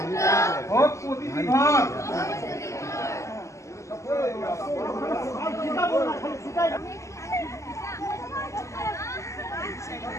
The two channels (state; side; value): late; right; 0.14 ms